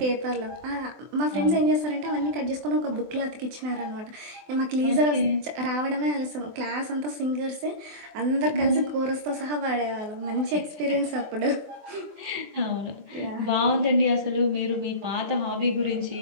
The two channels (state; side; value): late; left; 24 ms